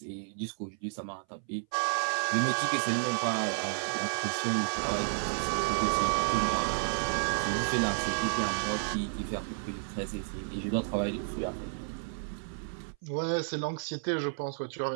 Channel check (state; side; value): silent; left; 57 dB below the other